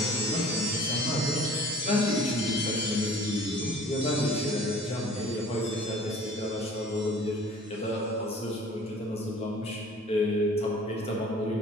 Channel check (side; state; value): both; normal; correlation 0.48